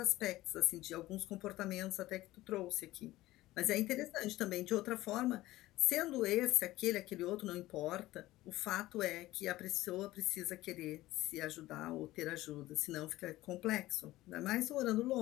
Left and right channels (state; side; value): quieter; right; 17.0 dB